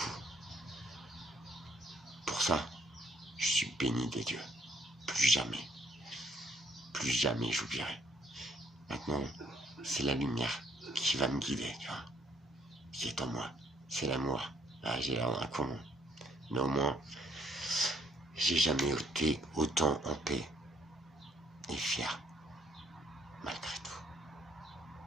Pour ça, je suis béni de Dieu. Plus jamais j'oublierai. Maintenant, c'est la lumière qui va me guider, tu vois. Qui est en moi. C'est l'amour. Ah, j'ai l'air d'un con. Mais au moins, j'ai jamais été autant en paix et fier, malgré tout,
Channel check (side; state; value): both; normal; correlation 0.66